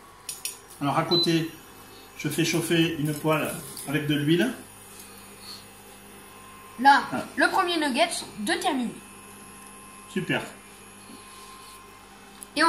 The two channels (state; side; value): identical; both; correlation 1.00